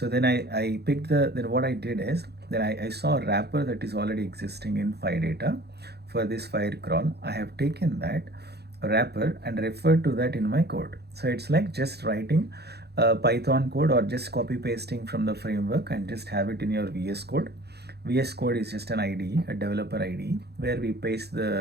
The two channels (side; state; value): left; late; 0.48 ms